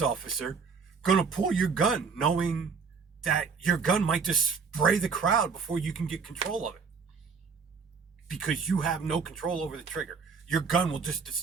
officer, going to pull your gun knowing that your gun might just spray the crowd before you can get control of it? Because you have no control over the trigger. Your gun will just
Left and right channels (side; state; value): left; quieter; 5.5 dB